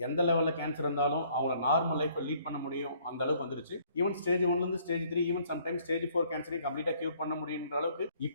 எந்த லெவலில் கேன்சர் இருந்தாலும் அவங்கள நார்மல் லைஃப்பை லீட் பண்ண முடியும், அந்த அளவுக்கு வந்துருச்சு. Even stage 1 stage 3, even sometimes stage 4 கேன்சரையும் கம்ப்ளீட்டாக கியூர் பண்ண முடியுன்ற அளவுக்கு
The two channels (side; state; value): both; inverted; correlation -0.62